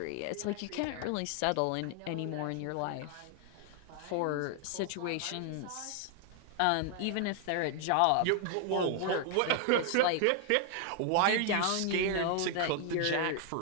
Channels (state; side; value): different; both; correlation 0.00